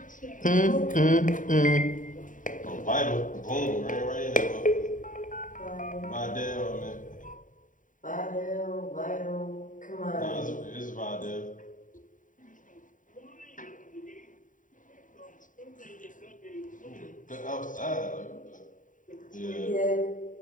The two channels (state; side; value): late; right; 0.38 ms